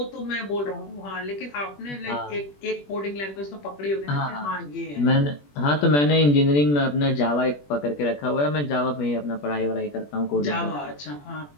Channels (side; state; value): right; late; 21 ms